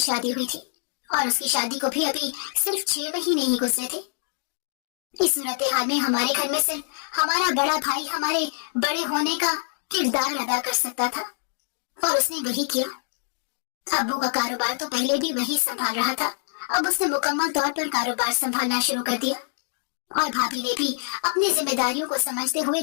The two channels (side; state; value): right; silent; digital silence